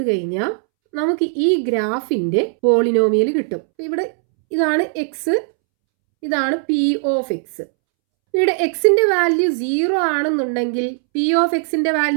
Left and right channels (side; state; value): left; silent; 67 dB below the other